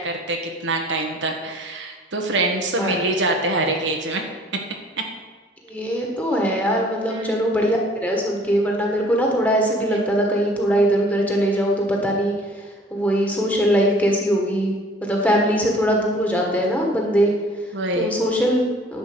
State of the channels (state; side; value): normal; both; correlation 0.53